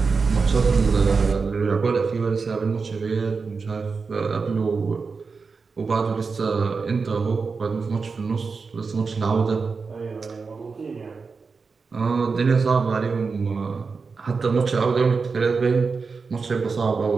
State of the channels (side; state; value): left; quieter; 4.8 dB